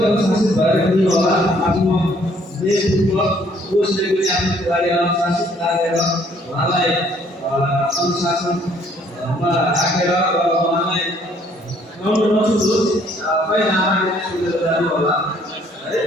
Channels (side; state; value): both; normal; correlation 0.62